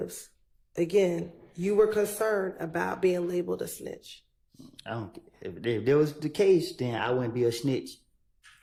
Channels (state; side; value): identical; both; correlation 1.00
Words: again, you were concerned about being labeled a snitch? If that was the case, then I wouldn't be a snitch.